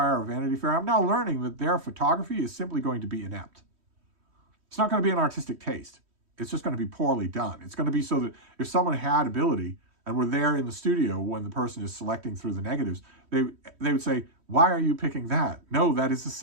or Vanity Fair, I'm now learning that their photography is simply going to be inept. It's not going to be an artistic taste. It's just going to be poorly done. It's going to be so that if someone had ability and were there in the studio when the person is selecting through the negatives, they would say, why are you picking that? No, that is a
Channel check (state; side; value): late; left; 3.1 ms